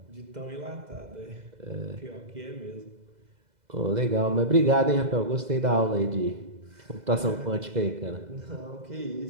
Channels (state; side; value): late; left; 2.0 ms